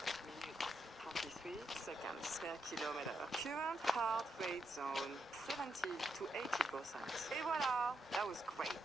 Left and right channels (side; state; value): both; normal; correlation 0.82